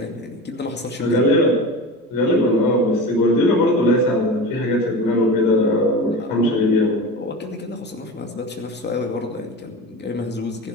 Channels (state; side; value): normal; both; correlation 0.29